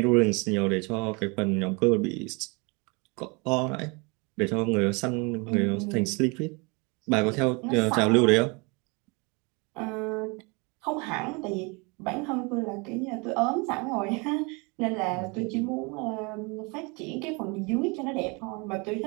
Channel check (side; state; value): left; quieter; 29.4 dB